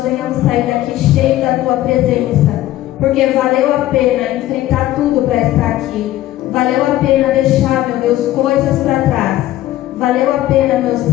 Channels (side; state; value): right; quieter; 14.7 dB